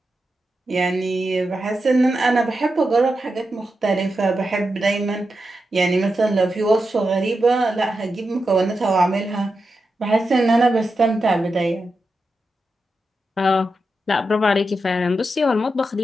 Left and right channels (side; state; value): both; normal; correlation 0.88